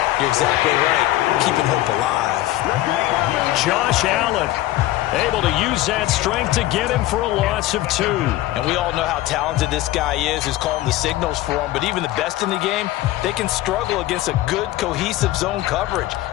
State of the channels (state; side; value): quieter; right; 15.8 dB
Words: You're exactly right. Keeping hope alive. Josh Allen able to use that strength to get him for a loss of 2. And we all know how talented this guy is, who's calling the signals for him. But even the best in the game, they can struggle against a good, cohesive zone coverage.